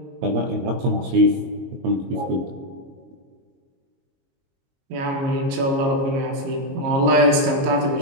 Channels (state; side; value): late; left; 22 ms